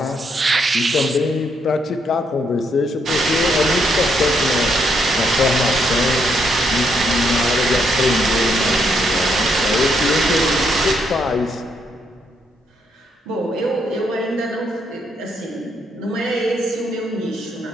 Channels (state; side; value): normal; both; correlation 0.75